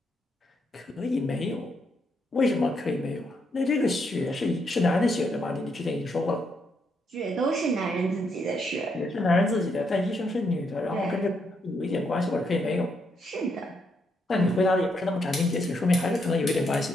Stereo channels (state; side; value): normal; both; correlation 0.77